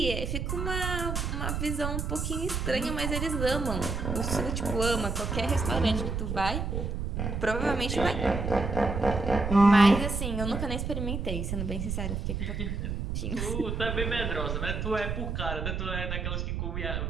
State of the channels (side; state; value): right; noise; rumble, 2 dB below the sound